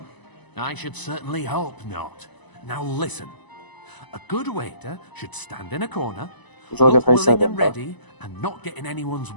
I should certainly hope not. Now listen. A good waiter should stand in a corner, look willing and ready, and not get in anyone's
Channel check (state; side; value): late; right; 1.0 ms